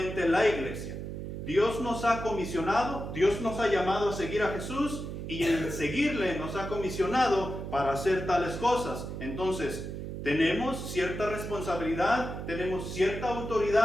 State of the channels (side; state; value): right; noise; hum, 7 dB below the sound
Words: la iglesia. Dios nos ha comisionado, Dios nos ha llamado a seguir a Jesús, y en seguirle nos ha comisionado para hacer tales cosas. Entonces, tenemos cierta responsabilidad, tenemos cierta